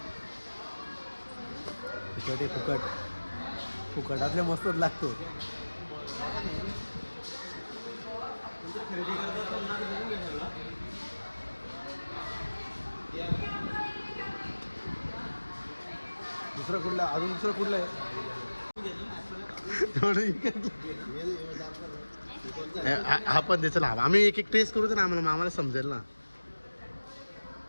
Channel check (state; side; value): inverted; both; correlation -1.00